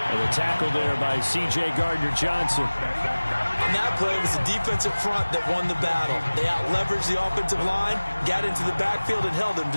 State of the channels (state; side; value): inverted; both; correlation -1.00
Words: And the tackle there by C.J. Gardner-Johnson. On that play, it was the defensive front that won the battle. They out-leveraged the offensive line, got into the backfield, and held them